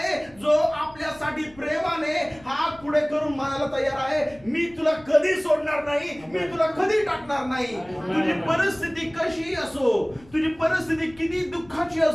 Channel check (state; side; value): noise; left; rumble, 25 dB below the sound